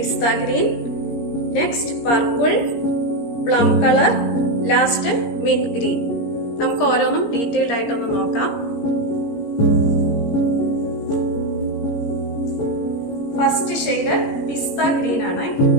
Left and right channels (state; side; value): late; right; 17 ms